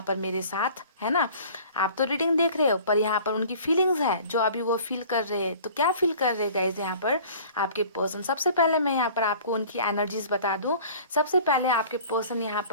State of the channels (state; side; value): inverted; both; correlation -0.47